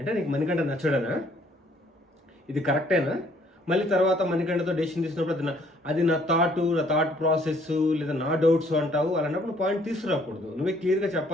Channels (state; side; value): normal; both; correlation 0.63